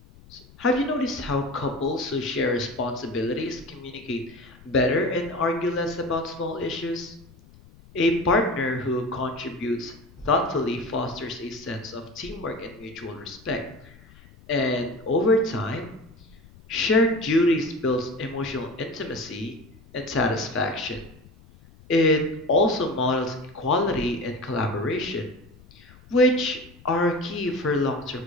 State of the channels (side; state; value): left; noise; rumble, 24 dB below the sound